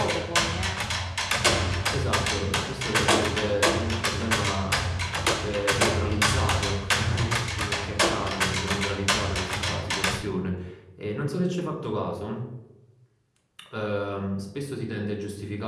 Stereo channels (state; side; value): identical; both; correlation 1.00